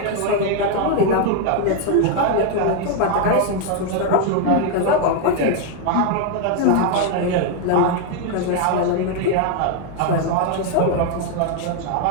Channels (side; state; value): both; different; correlation 0.00